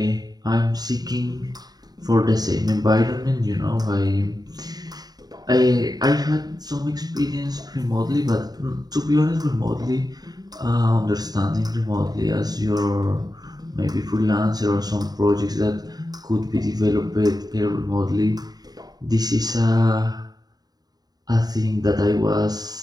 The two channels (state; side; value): late; left; 0.19 ms